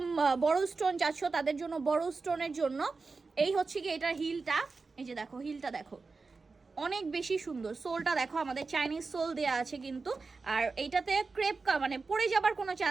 বড় স্টোন চাচ্ছ তাদের জন্য, বড় স্টোনের জন্য এই হচ্ছে কি এটার হিলটা, এই যে দেখো, হিলটা দেখো অনেক বেশি সুন্দর। সোলটা দেখো, আমাদের চাইনিজ সোল দেওয়া আছে কিন্তু, আর এইটাতে ক্রেপ মানে পড়ে যাবার কোনো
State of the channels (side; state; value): left; quieter; 4.2 dB